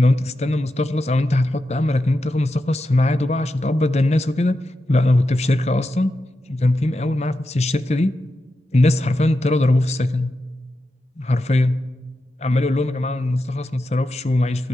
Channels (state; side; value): normal; both; correlation 0.88